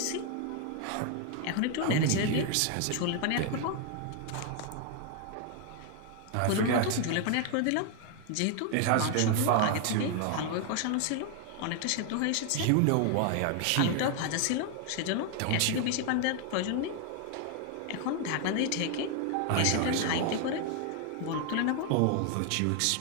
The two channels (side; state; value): both; different; correlation 0.00